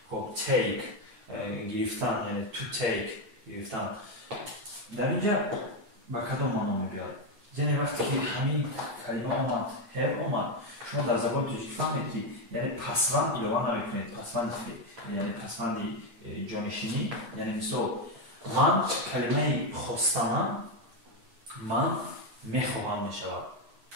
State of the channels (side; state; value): left; late; 8.8 ms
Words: خب take گرفتن یعنی to take گرفتن. در اینجا با کدام معنا میاد؟ یعنی وقتی که همین کلمه آمد have آمد شما در زبان توجیه فهمید که یعنی پسوند ایلوان نمیکنید، پسوند یعنی پسوند جانشینی. یعنی مثال من کلمه خواستنم من میخواهم میشود.